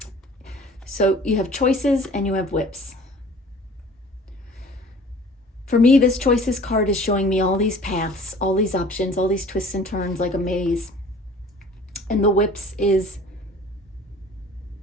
So you have choices and you have whips. For me, this choices card is showing me all these paths, all these options, all these twists and turns like a maze. And the whips is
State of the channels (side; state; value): both; normal; correlation 0.48